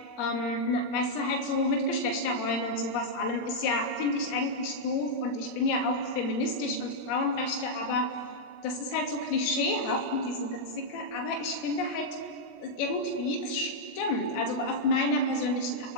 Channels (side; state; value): right; late; 17 ms